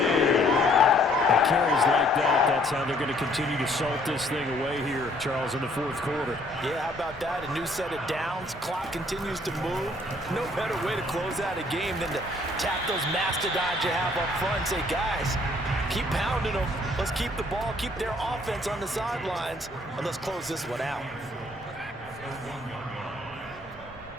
And carries like that, that's how they're going to continue to salt this thing away here, Charles, in the fourth quarter. Yeah, how about that? A new set of downs. Clock continues to move. No better way to close out a game than to tap those mastodons you have up front and say, guys, keep pounding them. Let's keep the ball, keep their offense on the sidelines, and let's close this one out.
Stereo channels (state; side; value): normal; both; correlation 0.62